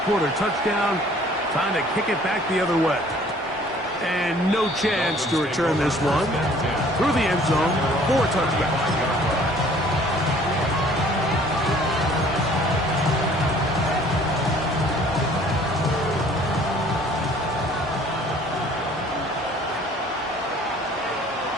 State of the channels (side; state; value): both; normal; correlation 0.55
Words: quarter touchdown, time to kick it back the other way. And no chance to return this one through the end zone for a touchback.